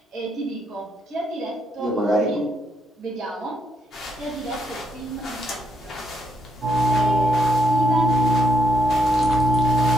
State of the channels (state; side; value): normal; both; correlation 0.75